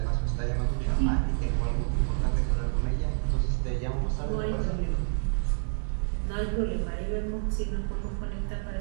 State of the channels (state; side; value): silent; left; 59 dB below the other